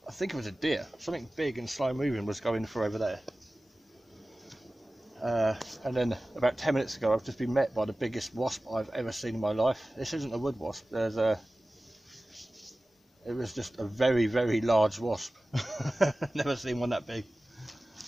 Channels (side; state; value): both; normal; correlation 0.97